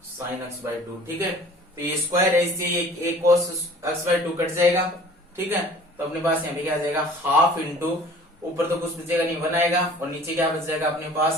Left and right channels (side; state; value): both; normal; correlation 0.49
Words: sine x by two. ठीक है, तो ये स्क्वायर है, इससे एक कोस एक्स बाई टू कट जाएगा। ठीक है, तो अपने पास यहाँ पे क्या आ जाएगा हाफ इंटू, ऊपर तो कुछ बचेगा नहीं वन आएगा, और नीचे क्या बच जाएगा अपने